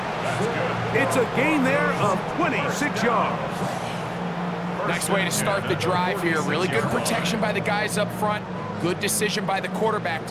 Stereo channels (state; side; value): identical; both; correlation 1.00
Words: It's a gain there of 26 yards. Nice way to start the drive here. Really good protection by the guys up front. Good decision by the quarterback